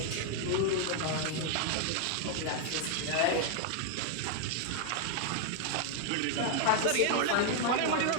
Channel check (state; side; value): different; both; correlation 0.00